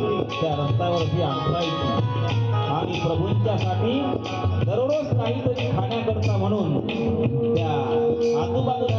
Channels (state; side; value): identical; both; correlation 1.00